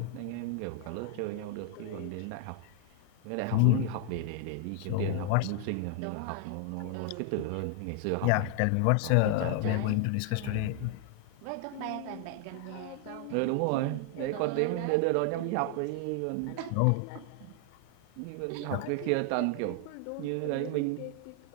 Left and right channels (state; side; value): different; both; correlation 0.00